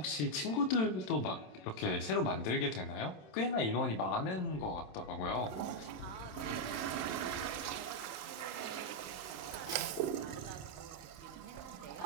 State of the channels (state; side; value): late; right; 26 ms